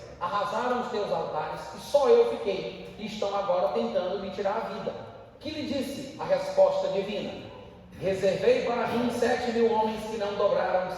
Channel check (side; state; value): both; identical; correlation 1.00